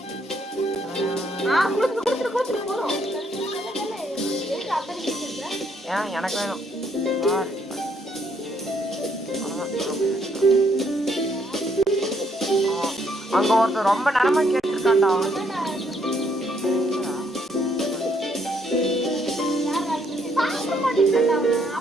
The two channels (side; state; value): both; normal; correlation 0.71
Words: ஏன் எனக்கு வேணும். அங்க ஒருத்தர் ரொம்ப நேரமா கேட்டிருக்காண்டா.